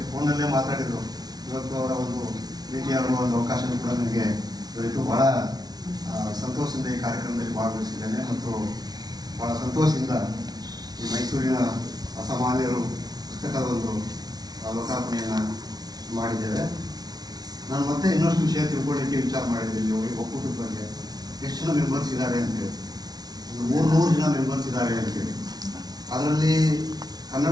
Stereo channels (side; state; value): left; late; 0.19 ms